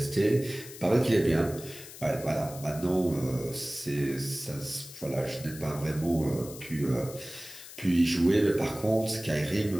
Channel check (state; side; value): noise; left; hiss, 15 dB below the sound